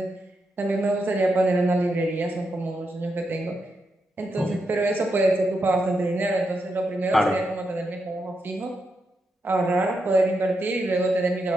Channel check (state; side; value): normal; both; correlation 0.84